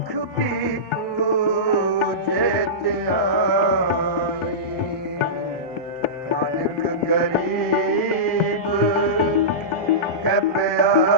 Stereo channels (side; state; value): both; normal; correlation -0.18